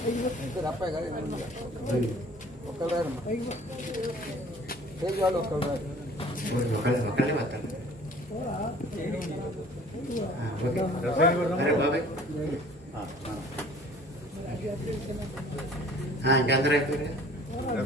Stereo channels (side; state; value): both; normal; correlation 0.50